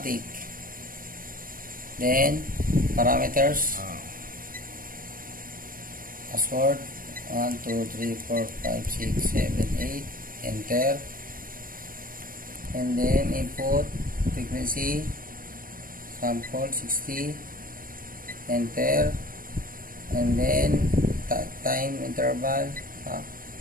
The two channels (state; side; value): late; left; 0.41 ms